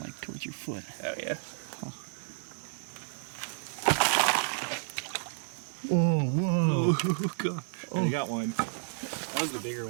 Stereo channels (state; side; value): silent; left; digital silence